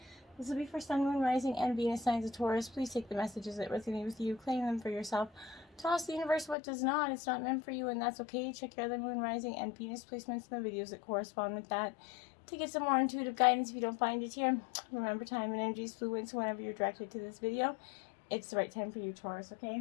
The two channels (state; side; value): drops out; right; at 6.6 s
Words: This will be for Sun, Moon, Rising, and Venus signs of Taurus. Please take the messages that resonate with you, claim them for yourself. Toss the universe what does not. It's not meant for you, and that's okay. Check your other Moon, Rising, and Venus placements in the videos that correspond with that to get some more intuitive guidance if you don't find it here. Remember, time and energy is fluid, so whenever you're directed to this video, it's the right time for you, Taurus, okay?